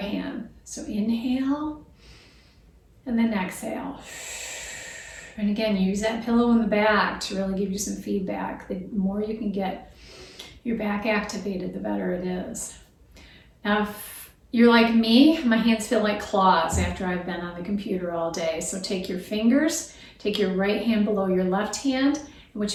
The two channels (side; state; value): both; identical; correlation 1.00